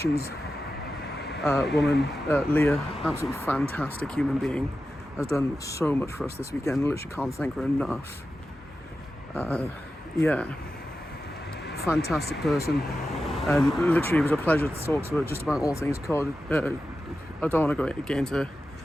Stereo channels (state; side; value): normal; both; correlation 0.92